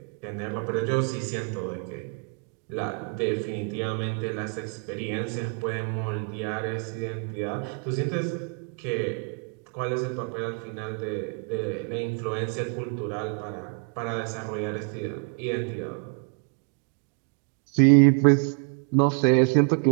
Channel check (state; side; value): quieter; left; 37.3 dB